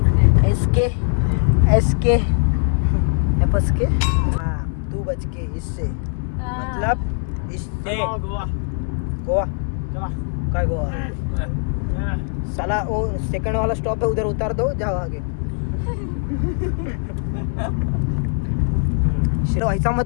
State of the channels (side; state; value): right; silent; 57 dB below the other